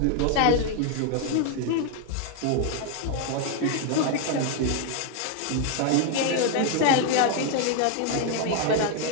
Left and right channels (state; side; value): different; both; correlation 0.01